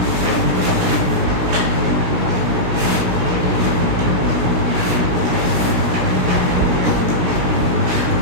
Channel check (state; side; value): late; left; 16 ms